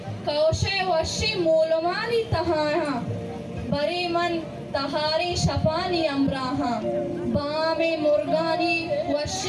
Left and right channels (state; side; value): identical; both; correlation 1.00